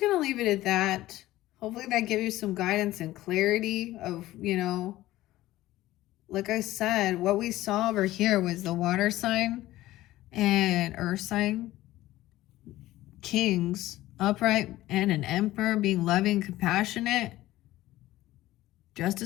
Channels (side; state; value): right; quieter; 16.1 dB